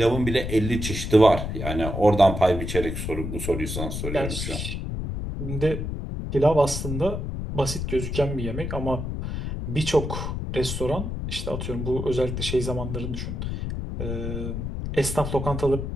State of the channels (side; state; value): left; noise; rumble, 4 dB below the sound